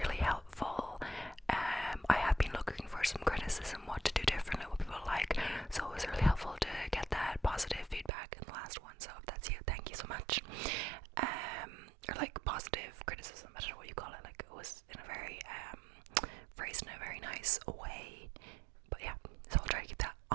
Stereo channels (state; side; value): drops out; left; at 8.1 s